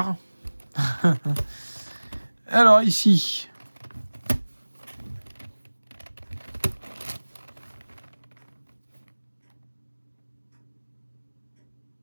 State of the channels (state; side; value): inverted; both; correlation -1.00